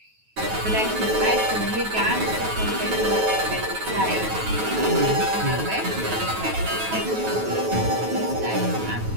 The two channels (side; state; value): left; late; 9.3 ms